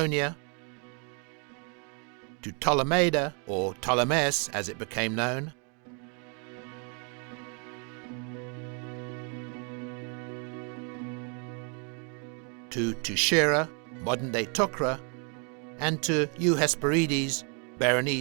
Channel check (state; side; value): quieter; left; 37.7 dB